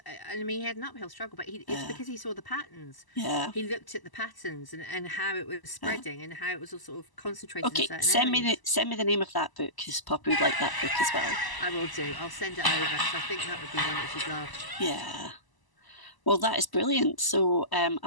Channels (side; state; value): right; late; 1.0 ms